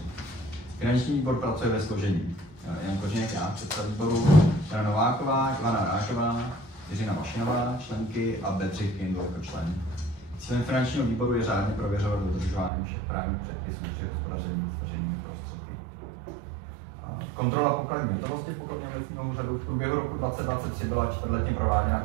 Finanční výbor pracuje ve složení Jan Koženek, já, předseda výboru, Jana Nováková, Ivana Rážová, Jiřina Mašinová, členky a Bedřich Kindl jako člen. Cílem finančního výboru je řádně prověřovat dodržování všech právních předpisů při hospodaření s veřejnými prostředky. Kontrola pokladní hotovosti pokladního obecního úřadu. V průběhu roku 2023 byla čtvrtletně prováděna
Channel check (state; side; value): drops out; left; at 12.7 s